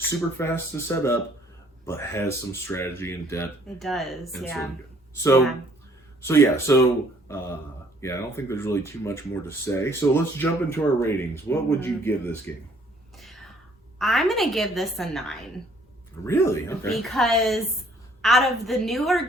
fast to set up, but has some strategy and depth. It does, And yeah. I don't think there's really too much more to say. So let's jump into our ratings. What would you give this game? I'm going to give this a 9. Really? Okay. Because out of the newer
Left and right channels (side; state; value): both; normal; correlation 0.61